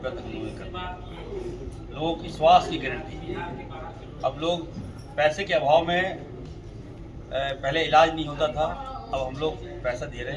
तक लोगों ने कर दिया। लोगों की स्वास्थ्य की गारंटी। अब लोग पैसे के अभाव में पहले इलाज नहीं होता था, अब हम लोग पैसा दे रहे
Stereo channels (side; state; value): both; identical; correlation 1.00